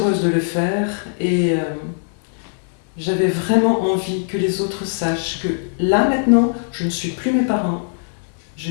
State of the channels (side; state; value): right; silent; digital silence